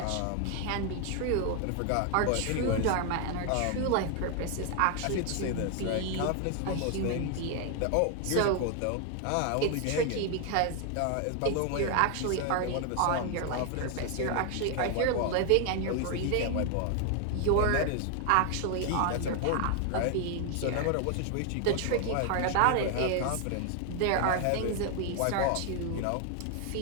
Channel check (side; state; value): both; different; correlation 0.00